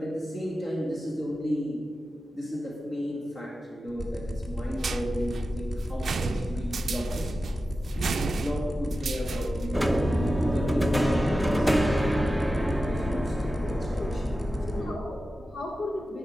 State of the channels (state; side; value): normal; both; correlation 0.93